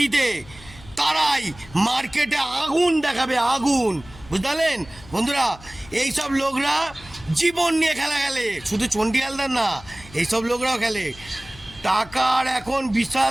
তারাই মার্কেটে আগুন দেখাবে, আগুন, বুঝলেন বন্ধুরা? এইসব লোকরা জীবন নিয়ে খেলা খেলে, শুধু চণ্ডীহালদার না, এইসব লোকরাও খেলে। টাকার এখন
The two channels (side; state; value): left; noise; hum, 20 dB below the sound